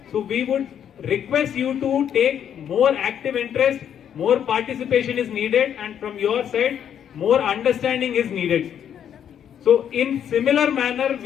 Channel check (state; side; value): quieter; right; 9.1 dB